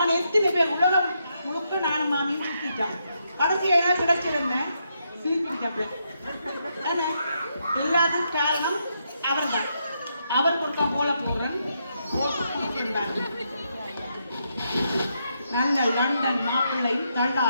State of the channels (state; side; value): inverted; both; correlation -0.79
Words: எத்தனை பேர் உலகம் முழுக்க நானும் மாமியும் சுத்திட்டான் கடைசியா என்ன கிடைச்சிருந்தேன் ஸ்லீப்பிங் டேப்லெட் அதான் எல்லாத்துக்கும் காரணம் அவர் தான் அவர் கொடுக்க போல போறேன் நல்ல லண்டன் மாப்பிள்ளையும்